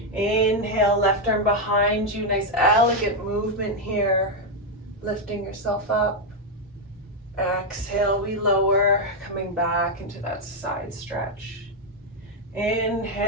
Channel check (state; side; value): normal; both; correlation 0.02